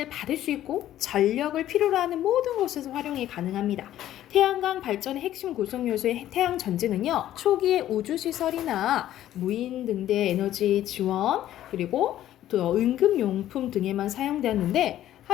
받을 수 있고 전력을 필요로 하는 모든 곳에서 활용이 가능합니다. 태양광 발전의 핵심 구성 요소의 태양 전지는요. 초기의 우주시설이나 무인 등대 에너지 지원 그리고 또 응급용품 등에만 사용되었는데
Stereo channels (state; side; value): quieter; right; 12.7 dB